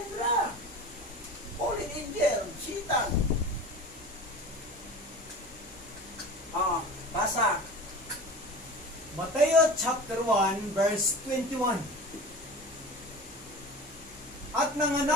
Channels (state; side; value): normal; both; correlation 0.35